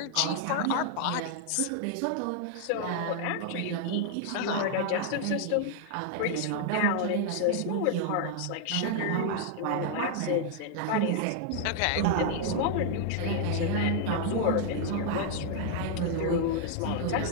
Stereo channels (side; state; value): both; different; correlation 0.00